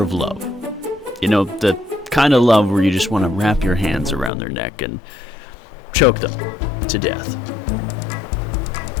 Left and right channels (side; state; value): right; drops out; at 4.3 s